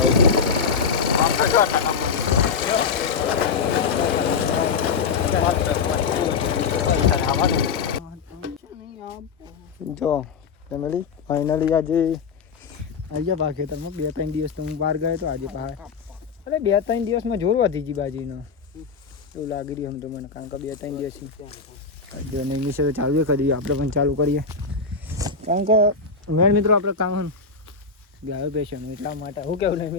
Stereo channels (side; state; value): right; quieter; 5.2 dB